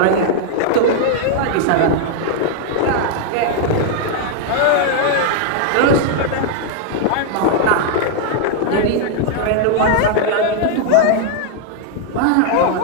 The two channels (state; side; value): different; both; correlation 0.00